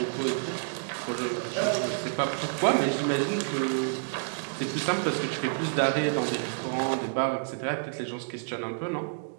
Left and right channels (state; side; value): silent; left; digital silence